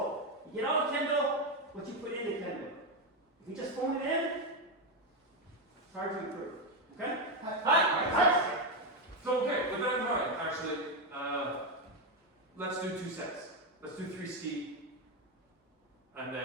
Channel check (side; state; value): both; normal; correlation 0.07